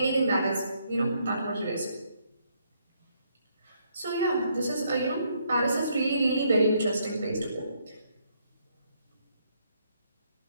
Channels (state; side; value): inverted; both; correlation -0.72